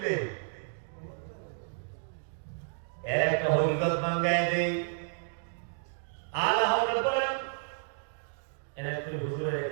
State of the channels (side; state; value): left; silent; digital silence